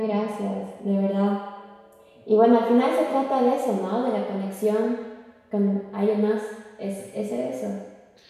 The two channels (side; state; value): both; identical; correlation 1.00